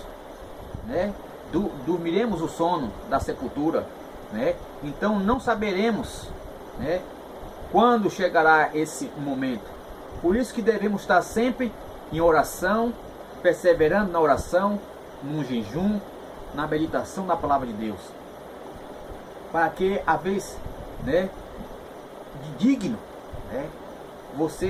né? Dormiremos o sono da sepultura, né? Então não saberemos, né, quando chegará esse momento. Por isso que devemos estar sempre em oração, perseverando na oração, no jejum, na meditação da palavra de Deus, para que a vez, né, de digno, né,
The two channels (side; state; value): both; identical; correlation 1.00